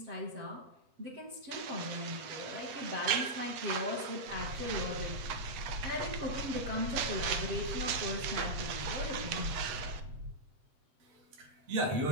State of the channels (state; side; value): late; left; 7.7 ms